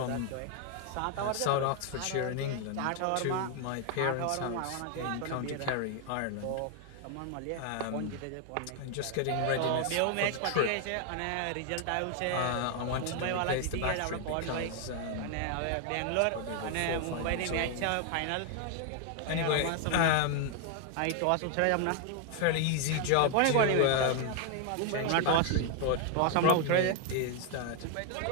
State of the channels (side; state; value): both; different; correlation 0.00